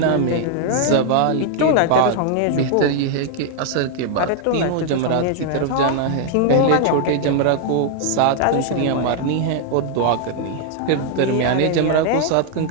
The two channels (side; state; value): both; different; correlation 0.00